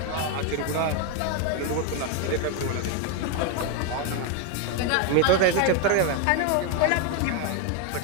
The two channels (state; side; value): different; both; correlation 0.01